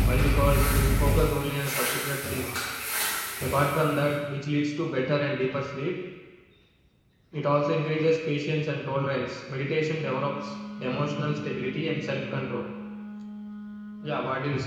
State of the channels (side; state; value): both; identical; correlation 1.00